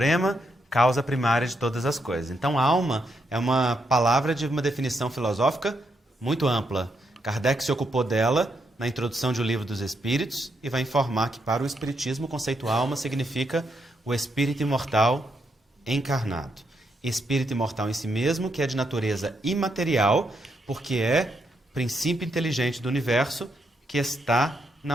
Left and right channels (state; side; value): normal; both; correlation 0.79